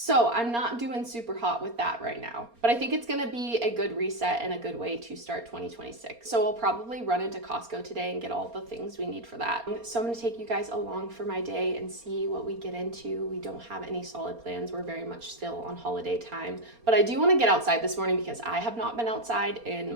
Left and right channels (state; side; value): late; left; 4.3 ms